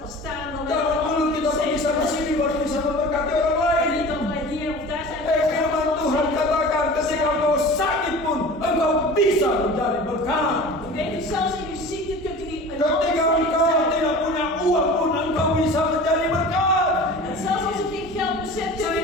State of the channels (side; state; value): both; normal; correlation 0.38